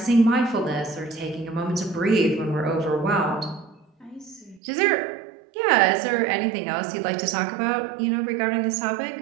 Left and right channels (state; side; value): drops out; left; at 4.6 s